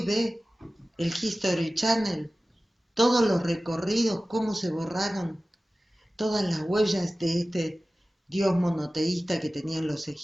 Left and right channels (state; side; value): normal; both; correlation 0.96